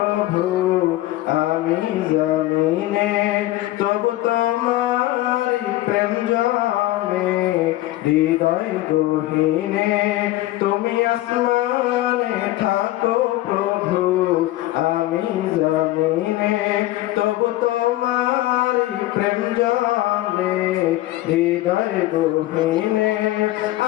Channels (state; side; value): quieter; right; 16.4 dB